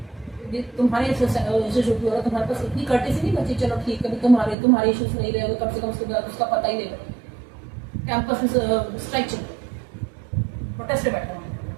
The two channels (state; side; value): drops out; left; at 4.5 s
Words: तुम्हारे इंस्टीट्यूट में हो रहा तुम्हारे पास इतनी कर्टेसी नहीं बची, चलो ठीक है तुम्हारे इश्यूज नहीं रहे, कम से कम उसके बाद उसका पता ही नहीं रहा, कैंपस में स्ट्राइक चल प्रोटेस्ट पे बैठा हुआ,